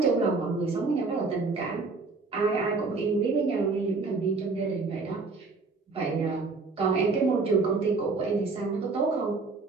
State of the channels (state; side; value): quieter; left; 4.0 dB